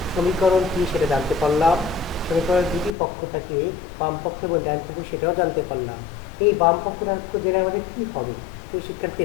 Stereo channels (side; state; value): right; drops out; at 3.0 s